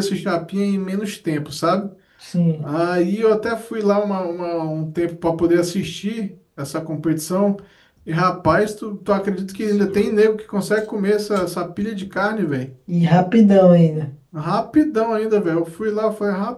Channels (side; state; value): both; identical; correlation 1.00